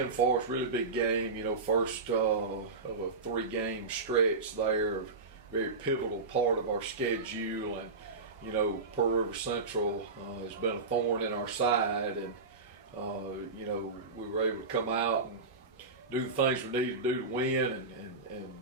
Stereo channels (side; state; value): left; quieter; 3.9 dB